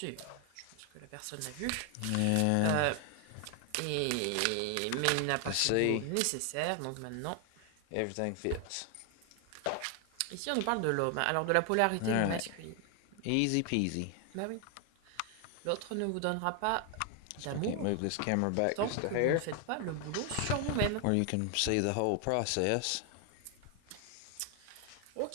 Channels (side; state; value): both; different; correlation 0.00